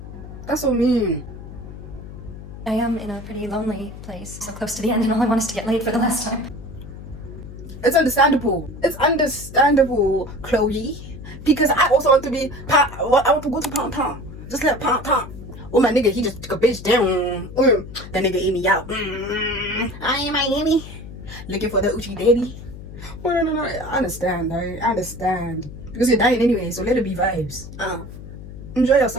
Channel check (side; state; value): left; noise; hum, 13 dB below the sound